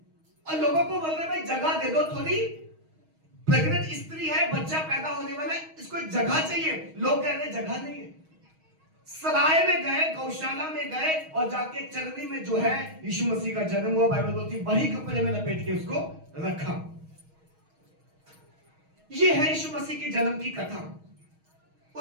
और लोगों को बोल रहे भाई जगह दे दो थोड़ी, प्रेग्नेंट स्त्री है, बच्चा पैदा होने वाला है, इसको एक जगह चाहिए। लोग कह रहे जगह नहीं है। सराय में गए, गौशाला में गए और जाके चरनी में जो है यीशु मसीह का जन्म हुआ। बाइबल बोलती वही कपड़े में लपेट के उसको रखा। यह है यीशु मसीह के जन्म की कथा।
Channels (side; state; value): left; late; 6.3 ms